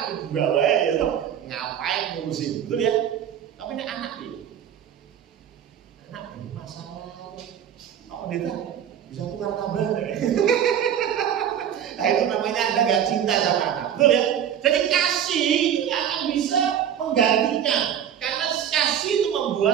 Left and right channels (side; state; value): left; quieter; 9.4 dB